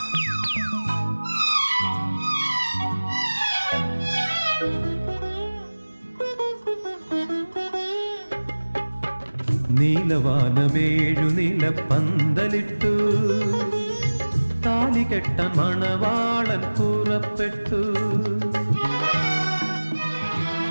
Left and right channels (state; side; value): inverted; both; correlation -1.00